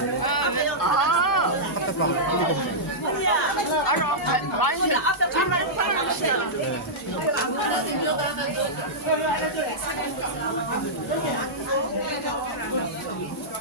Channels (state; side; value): normal; both; correlation -0.12